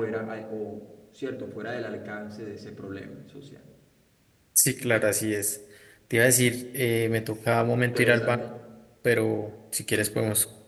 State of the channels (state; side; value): identical; both; correlation 1.00